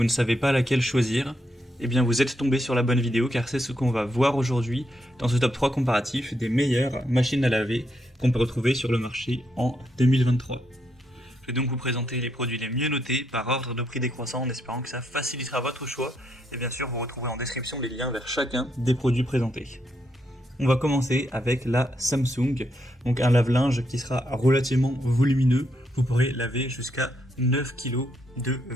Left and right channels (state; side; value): normal; both; correlation 0.78